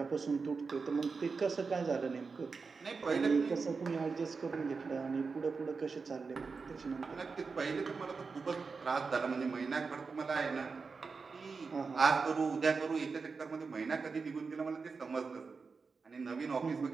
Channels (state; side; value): quieter; left; 4.7 dB